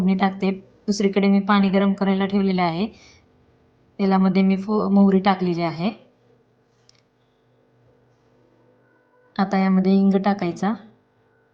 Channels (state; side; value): identical; both; correlation 1.00